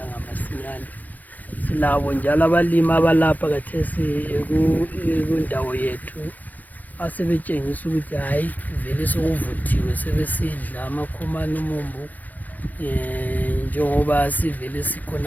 masinyane. Silabo njalo abalimi abalapha khathesi kundawo yethu asebetshengisa ukuthi hayi vele sokuvuthiwe, sebesidla amakhomane umumbu. Njengoba sivele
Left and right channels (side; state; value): right; late; 0.081 ms